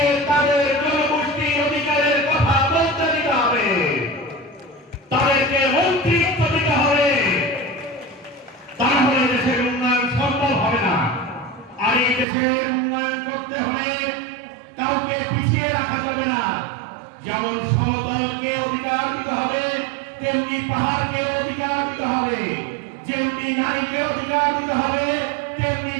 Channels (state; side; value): drops out; left; at 12.2 s